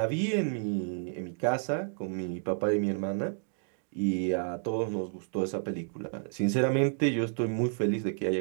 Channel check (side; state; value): left; silent; digital silence